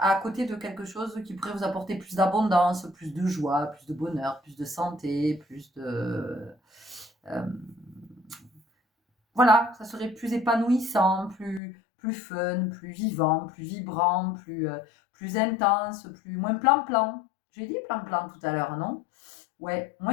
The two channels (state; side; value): drops out; right; at 11.6 s